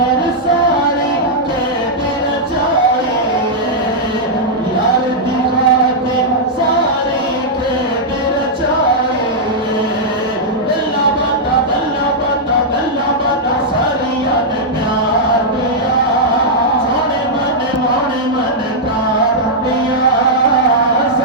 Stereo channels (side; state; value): both; normal; correlation -0.07